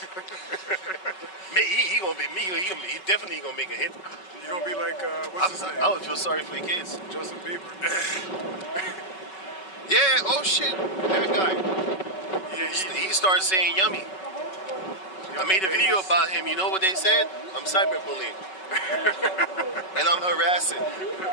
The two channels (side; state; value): right; late; 5.3 ms